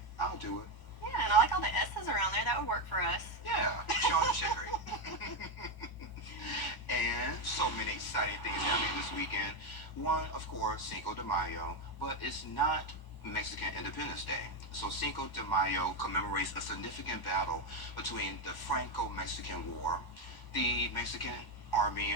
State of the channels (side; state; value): right; late; 1.0 ms